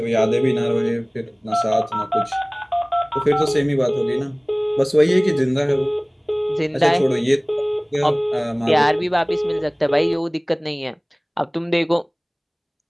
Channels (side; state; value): both; identical; correlation 1.00